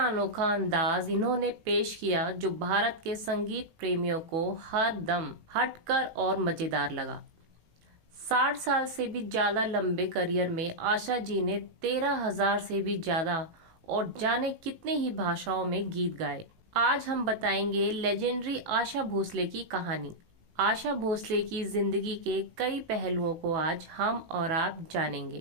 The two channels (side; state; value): left; late; 18 ms